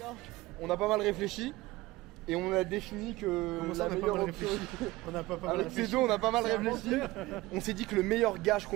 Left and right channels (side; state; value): left; quieter; 19.4 dB